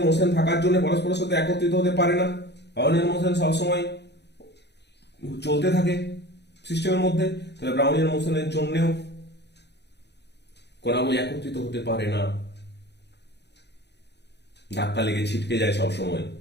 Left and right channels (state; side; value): late; right; 0.50 ms